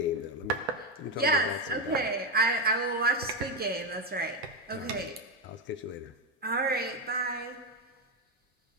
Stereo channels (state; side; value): normal; both; correlation 0.09